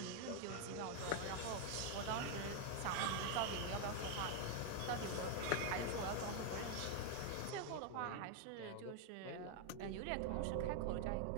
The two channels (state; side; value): different; both; correlation 0.01